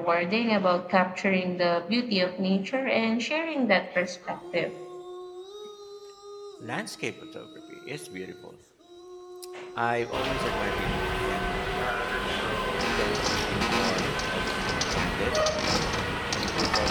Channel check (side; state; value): both; identical; correlation 1.00